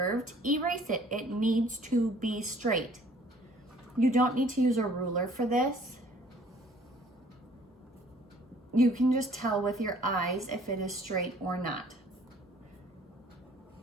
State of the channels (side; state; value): both; normal; correlation 0.56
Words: erase it. It needs to be straight. You don't need to use a ruler for this. You can just tell with your eyes if it is straight or not.